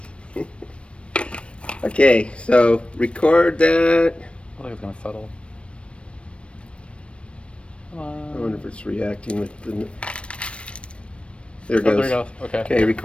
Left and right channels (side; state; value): right; late; 0.060 ms